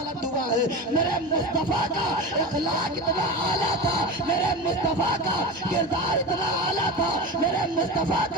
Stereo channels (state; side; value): normal; both; correlation 0.26